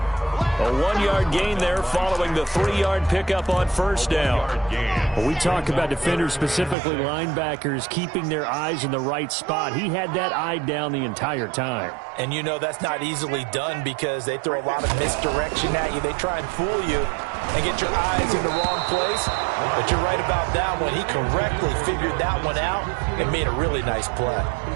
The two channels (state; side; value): drops out; left; at 6.8 s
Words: A 1-yard gain there following the 3-yard pickup on 1st down. Well, we talk about defenders, specifically linebackers, keeping their eyes in the right spot. He had that eye down the entire time. And you know that's not easily done because they throw a lot of misdirection at you. They try and fool you and get your eyes in the wrong place. But you're right about that one. He correctly figured that one out and made a really nice play.